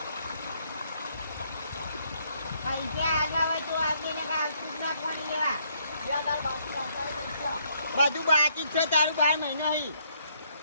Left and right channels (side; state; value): both; inverted; correlation -0.70